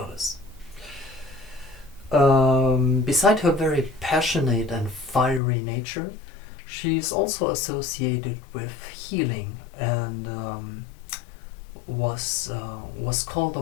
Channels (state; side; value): drops out; right; at 5.4 s